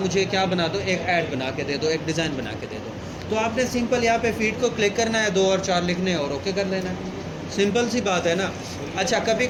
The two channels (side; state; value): both; identical; correlation 1.00